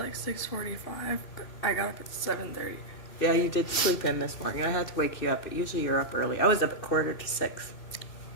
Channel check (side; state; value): right; late; 2.8 ms